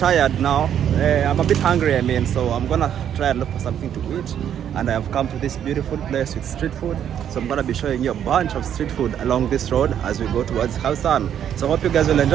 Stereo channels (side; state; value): left; quieter; 9.5 dB